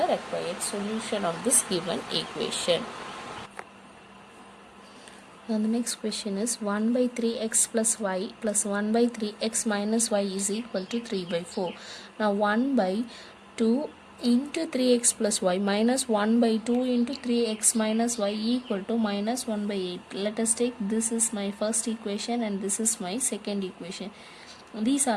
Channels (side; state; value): both; identical; correlation 1.00